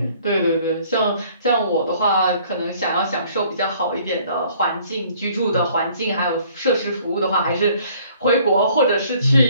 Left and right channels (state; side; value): inverted; both; correlation -0.57